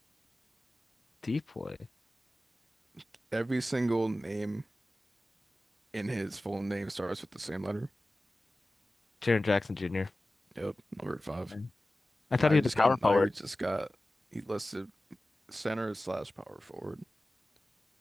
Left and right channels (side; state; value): both; normal; correlation 0.96